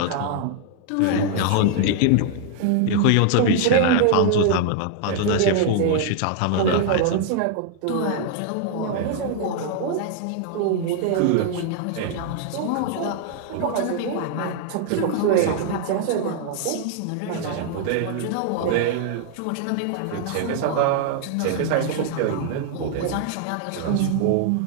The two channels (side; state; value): both; different; correlation 0.00